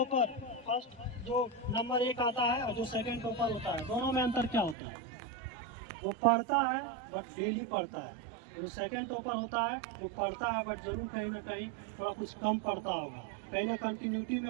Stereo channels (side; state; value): left; drops out; at 4.8 s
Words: फर्स्ट जो नंबर 1 आता है और जो सेकंड टॉपर होता है, दोनों में अंतर क्या होता है? वो पढ़ता है बट डेली पढ़ता है। जो सेकंड टॉपर होता है वो पढ़ता है बट जरूर कहीं ना कहीं थोड़ा कुछ कम पढ़ता होगा, कहीं ना कंटिन्यूटी में